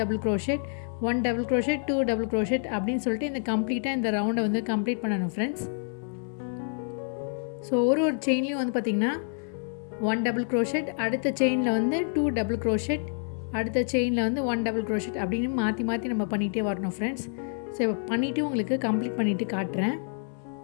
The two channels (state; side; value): silent; right; 59 dB below the other